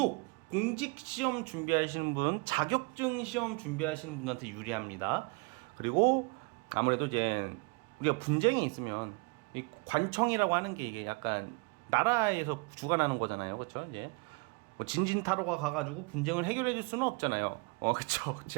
공직 시험 준비하시는 분, 자격증 시험 준비하시는 분한테 유리합니다. 그리고 아무래도 이제 우리가 분쟁이 있으면 이 관청이라고 하는 게 이게 약간 나라에서 주관하는 거잖아요, 그렇죠? 이제 뭐 진진타로가 가가지고 분쟁을 해결해 줄 수는 없잖아요. 그쵸.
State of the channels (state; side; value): quieter; left; 31.4 dB